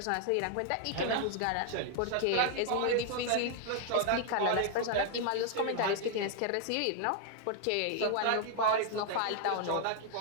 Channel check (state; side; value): different; both; correlation 0.00